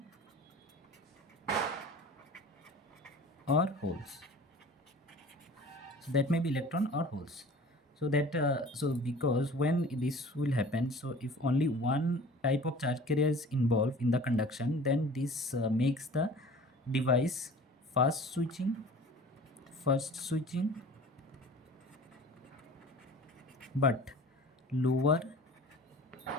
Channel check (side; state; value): both; normal; correlation 0.43